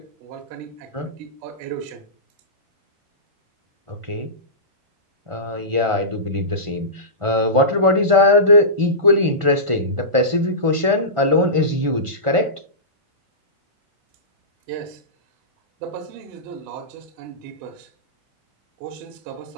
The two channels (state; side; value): late; left; 1.5 ms